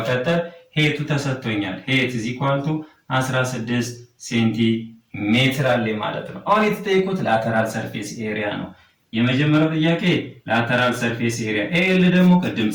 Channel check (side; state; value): both; identical; correlation 1.00